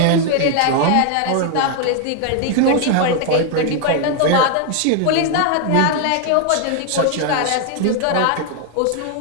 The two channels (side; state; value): both; different; correlation 0.00